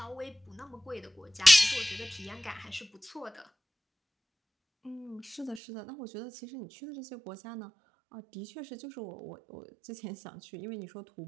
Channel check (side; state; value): left; drops out; at 5.6 s